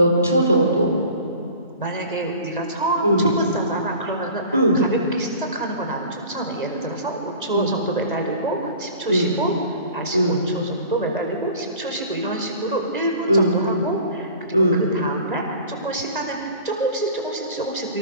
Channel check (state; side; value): inverted; both; correlation -0.43